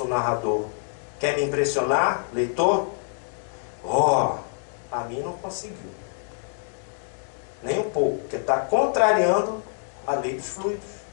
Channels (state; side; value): silent; right; digital silence